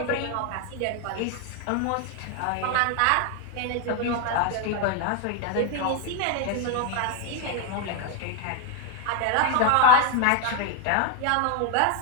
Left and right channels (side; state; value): both; different; correlation 0.01